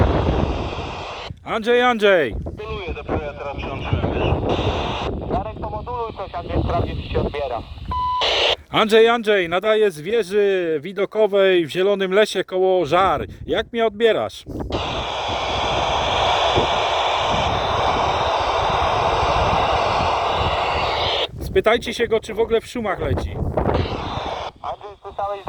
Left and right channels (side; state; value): both; identical; correlation 1.00